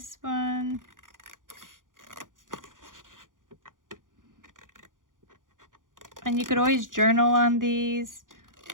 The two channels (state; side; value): late; left; 0.89 ms